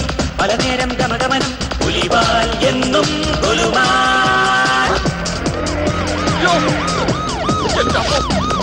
പല നേരം ഗമഗമനം പുലിവാൽ എന്നും കൊലുമാൻ.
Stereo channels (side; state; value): both; identical; correlation 1.00